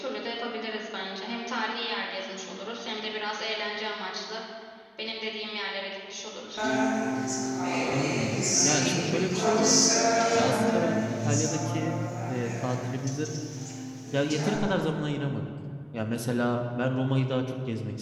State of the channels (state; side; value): identical; both; correlation 1.00